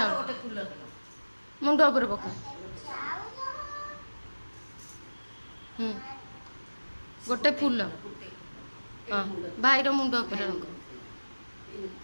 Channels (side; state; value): both; inverted; correlation -1.00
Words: मुंड ऊपर पका गोटे फूल हाँ भाई मुंड ऊपर रंग